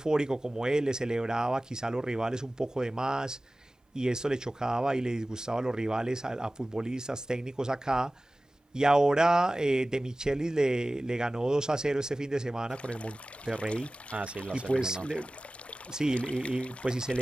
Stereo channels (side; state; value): both; normal; correlation 0.97